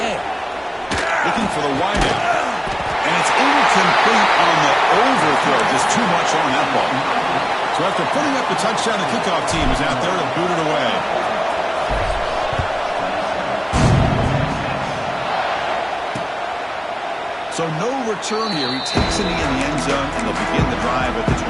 Looking for the wideout. And it's incomplete on the overthrow. Just too much on that ball. So after putting up the touchdown, the kickoff team is out there to boot it away. So no return here. He takes it in the end zone, and they'll begin the drive at the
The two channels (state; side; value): identical; both; correlation 1.00